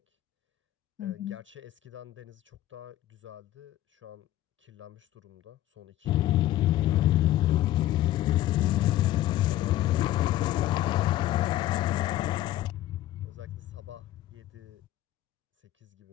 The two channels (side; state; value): right; quieter; 14.1 dB